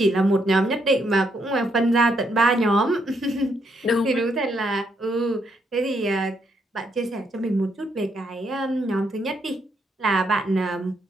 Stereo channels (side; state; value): both; normal; correlation 0.76